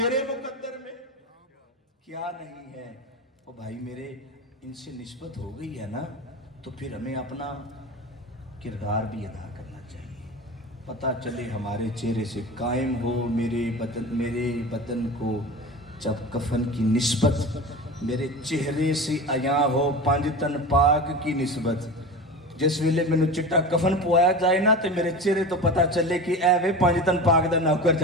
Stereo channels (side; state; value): both; normal; correlation 0.30